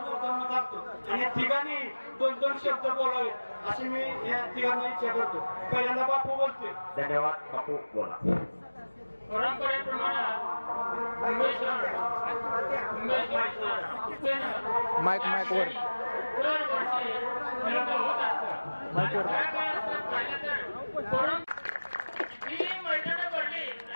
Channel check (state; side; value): inverted; both; correlation -1.00